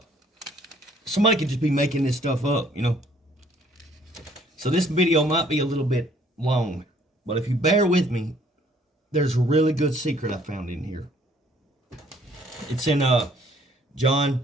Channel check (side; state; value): both; normal; correlation 0.62